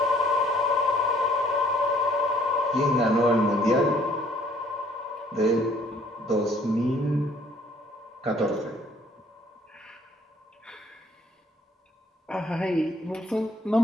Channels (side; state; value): both; normal; correlation 0.60